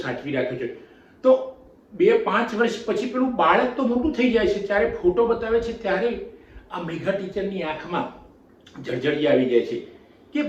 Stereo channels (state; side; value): identical; both; correlation 1.00